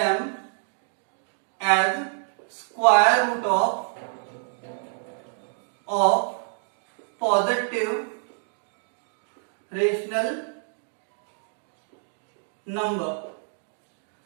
as square root of positive rational number.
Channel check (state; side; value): silent; left; 60 dB below the other